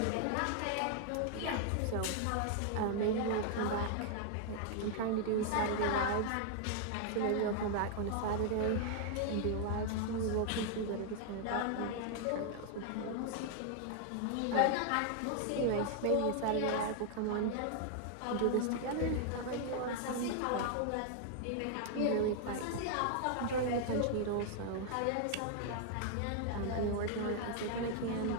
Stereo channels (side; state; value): both; different; correlation 0.00